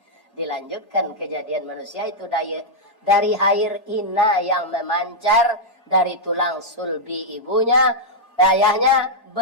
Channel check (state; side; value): normal; both; correlation -0.05